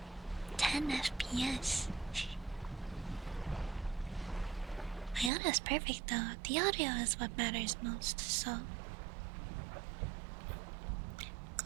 10 FPS. My audio is perfect though. The audio is what matters most, so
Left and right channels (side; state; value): left; drops out; at 5.3 s